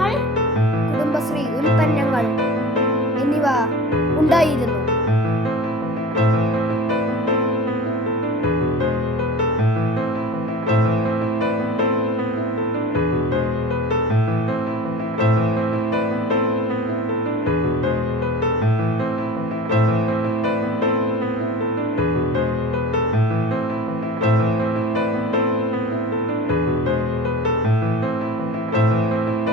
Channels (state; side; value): normal; both; correlation 0.37